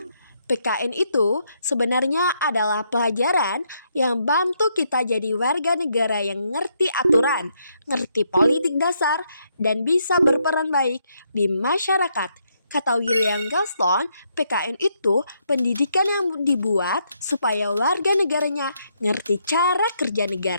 PKN itu sebenarnya adalah pelajaran yang bantu kita jadi warga negara yang ngerti aturan, ngerti politik dasar, dan bisa berperan baik di masyarakat. Kata William Galston, PKN itu pendidikan yang dibuat supaya warga negaranya ngerti cara kerja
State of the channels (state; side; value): inverted; both; correlation -0.76